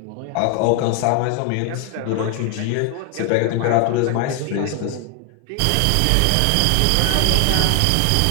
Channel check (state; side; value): different; both; correlation 0.00